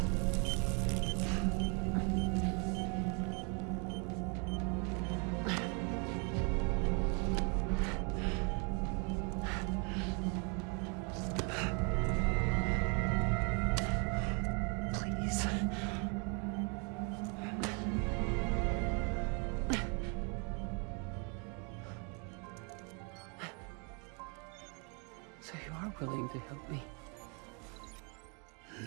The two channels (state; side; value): quieter; left; 35.2 dB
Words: willing to help me?